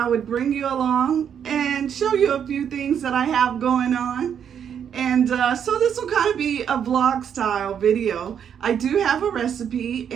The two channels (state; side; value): quieter; left; 8.3 dB